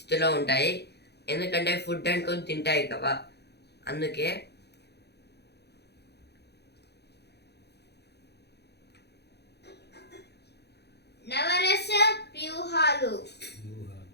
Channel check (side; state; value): right; late; 0.48 ms